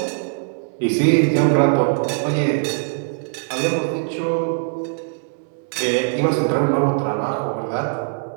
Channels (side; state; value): left; silent; 65 dB below the other